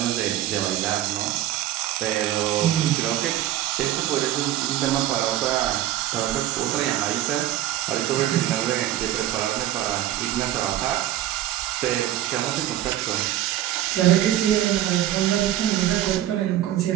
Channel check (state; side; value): quieter; left; 13.1 dB